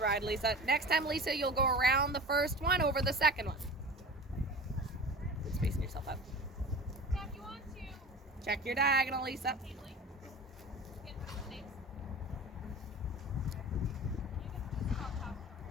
Lisa. Next time, Lisa, you'll go around the first one over the second one. Keep spacing yourself out. Now, if you want to Check your diagonal, Lisa. safely, you can put the names.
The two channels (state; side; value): normal; both; correlation 0.36